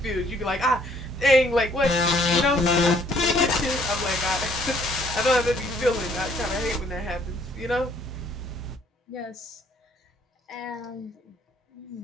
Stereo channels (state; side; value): normal; both; correlation 0.63